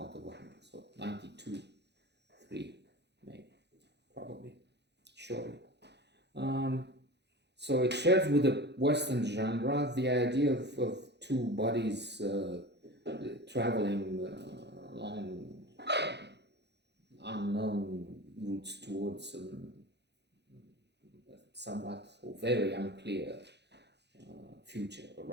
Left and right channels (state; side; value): late; left; 0.50 ms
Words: of 100. So 92, 3, maybe, probably, surely. So it shares with the Western genre the idea of two bodies traveling along unknown routes towards somewhat or very unclear future